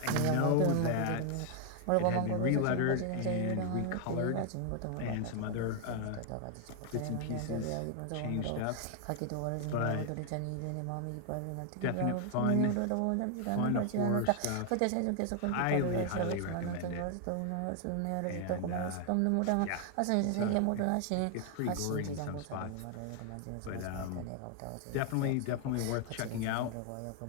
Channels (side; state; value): both; different; correlation 0.00